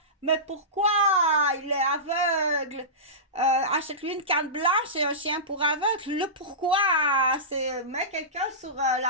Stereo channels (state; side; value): normal; both; correlation -0.19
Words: Mais pourquoi il est aveugle? Achète-lui une canne blanche et un chien pour aveugle. Le pourquoi, c'est mets quelqu'un sur